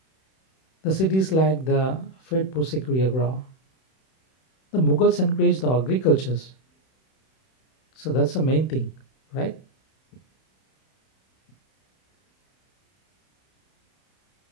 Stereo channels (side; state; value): right; late; 31 ms